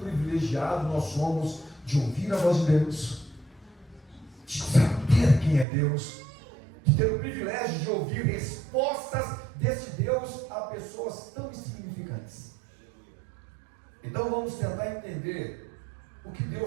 nós somos de ouvir a voz de Deus, de saber quem é Deus, de ter o privilégio de ouvir respostas desse Deus a pessoas tão insignificantes. Então vamos tentar entender o que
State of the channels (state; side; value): drops out; left; at 5.7 s